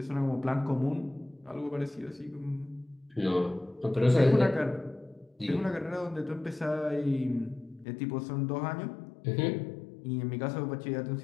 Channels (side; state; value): right; drops out; at 7.9 s